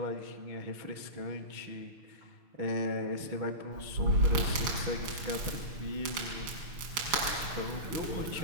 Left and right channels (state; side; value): late; left; 6.2 ms